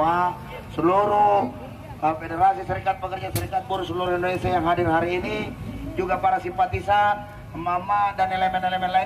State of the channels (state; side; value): identical; both; correlation 1.00